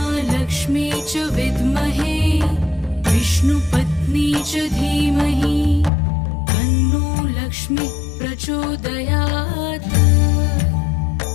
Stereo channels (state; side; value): drops out; right; at 5.9 s